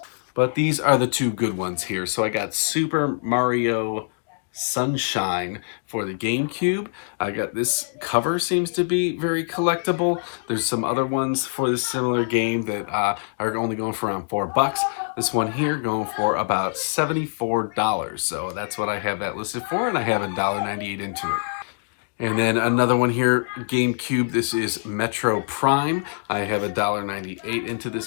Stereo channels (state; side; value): silent; right; digital silence